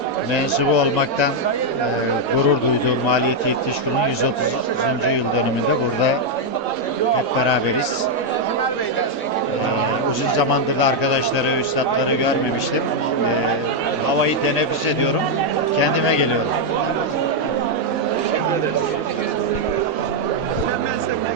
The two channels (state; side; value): normal; both; correlation -0.01